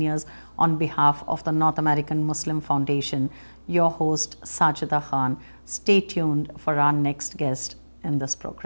on behalf of the North American Muslim Foundation. Your host, Sajida Khan. Stay tuned for our next guest in this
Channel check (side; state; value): both; inverted; correlation -1.00